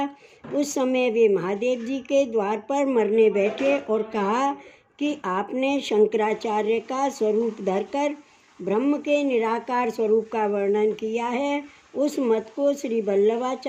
उस समय वे महादेव जी के द्वार पर मरने बैठे और कहा कि आपने शंकराचार्य का स्वरूप धरकर ब्रह्म के निराकार स्वरूप का वर्णन किया है। उस मत को श्री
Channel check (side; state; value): both; identical; correlation 1.00